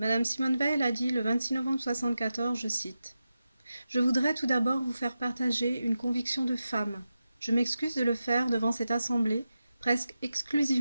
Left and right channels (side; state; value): both; inverted; correlation -0.91